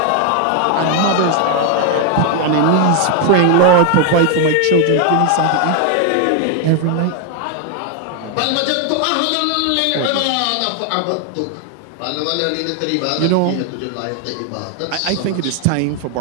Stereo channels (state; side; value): different; both; correlation 0.00